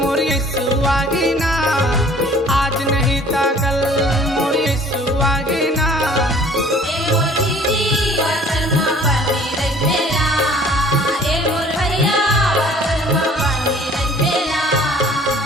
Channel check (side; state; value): both; normal; correlation 0.52